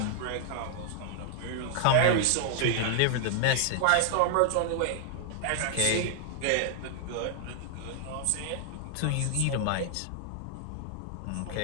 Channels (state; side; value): different; both; correlation 0.00